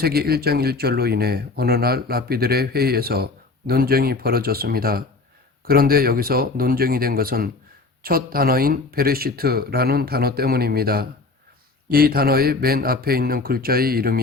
1장 1절로 인해 어느 날 랍비들의 회의에서 논쟁이 벌어졌습니다. 그런데 여기서 논쟁이 된 것은 첫 단어인 베레시트라는 단어 때문입니다. 이 단어의 맨 앞에 있는 글자의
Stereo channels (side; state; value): right; quieter; 3.7 dB